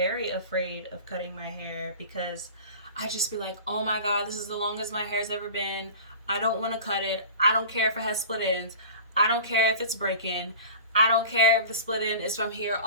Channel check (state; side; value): inverted; both; correlation -0.39